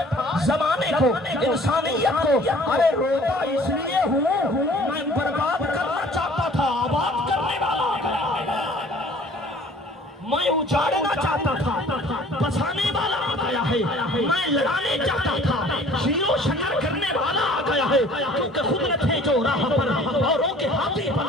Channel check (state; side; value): normal; both; correlation 0.51